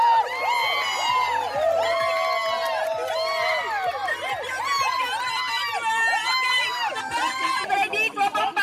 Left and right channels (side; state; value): both; identical; correlation 1.00